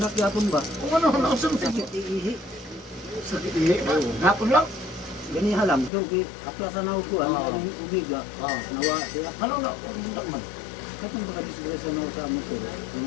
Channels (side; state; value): right; drops out; at 5.9 s